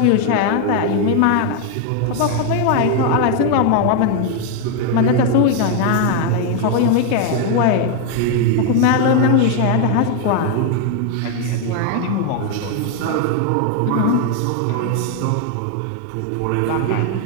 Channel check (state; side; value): different; both; correlation 0.01